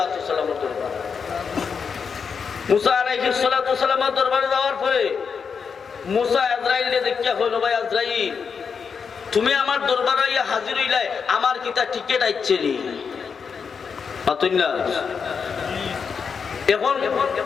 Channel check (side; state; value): right; quieter; 6.0 dB